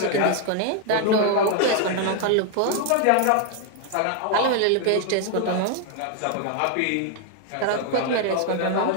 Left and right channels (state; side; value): different; both; correlation 0.00